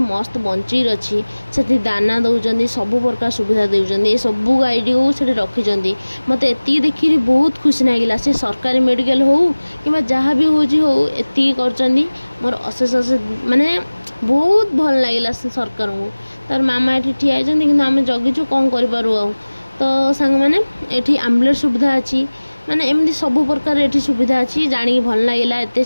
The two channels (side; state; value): both; inverted; correlation -1.00